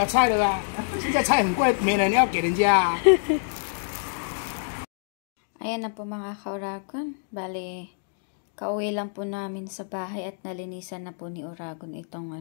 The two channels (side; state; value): right; silent; 61 dB below the other